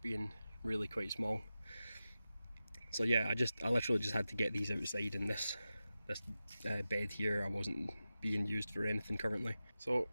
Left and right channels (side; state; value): both; inverted; correlation -0.93